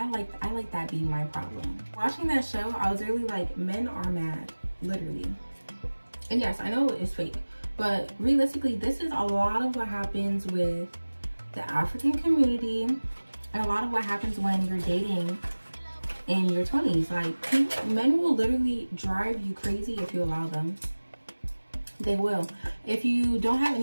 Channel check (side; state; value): both; inverted; correlation -1.00